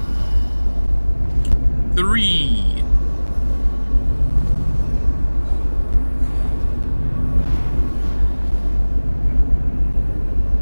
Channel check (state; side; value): inverted; both; correlation -1.00